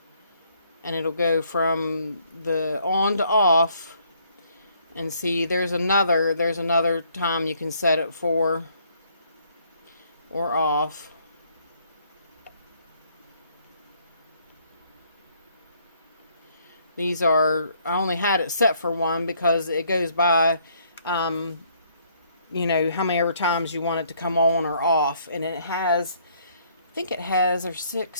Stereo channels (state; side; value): inverted; both; correlation -0.66